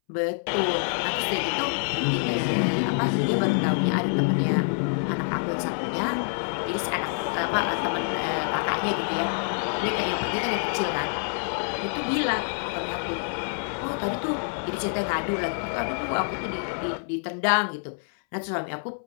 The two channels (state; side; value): silent; right; 60 dB below the other